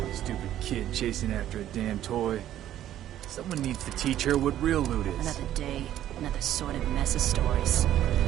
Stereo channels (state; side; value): quieter; left; 12.1 dB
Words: Stupid kid chasing after a damn toy. Someone needs to teach her what real loot is. Another day, another sordid mess of stories.